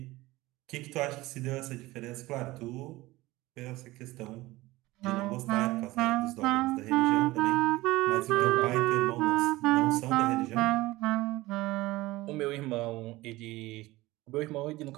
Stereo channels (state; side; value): quieter; left; 19.2 dB